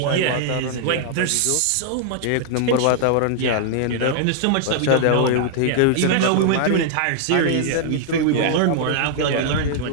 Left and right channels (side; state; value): both; different; correlation -0.01